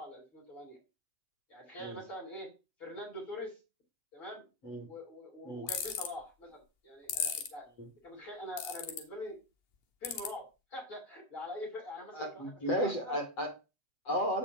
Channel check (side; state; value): right; late; 7.8 ms